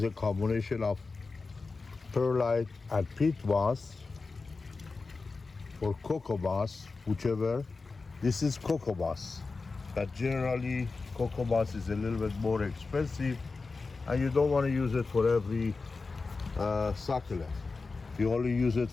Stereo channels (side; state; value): right; quieter; 4.1 dB